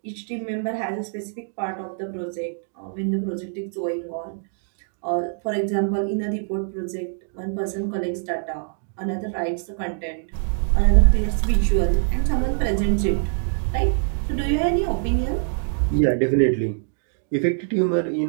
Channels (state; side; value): silent; left; digital silence